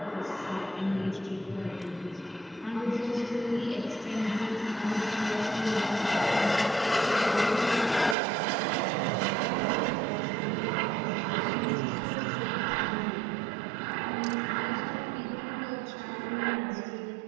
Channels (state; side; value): drops out; left; at 8.2 s